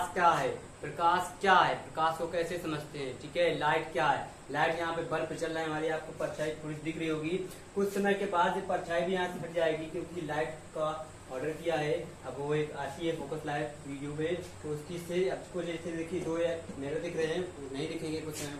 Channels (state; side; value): identical; both; correlation 1.00